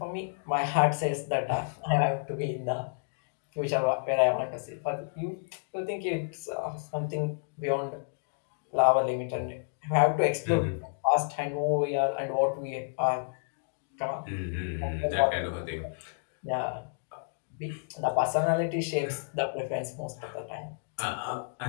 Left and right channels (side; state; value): right; silent; digital silence